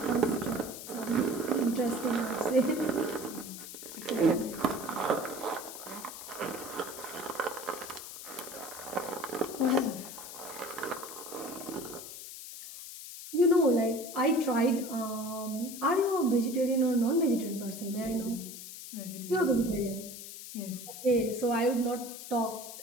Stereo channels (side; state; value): left; noise; hiss, 11 dB below the sound